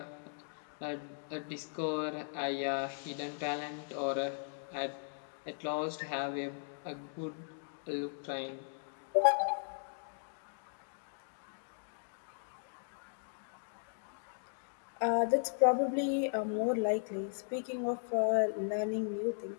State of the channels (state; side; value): silent; right; digital silence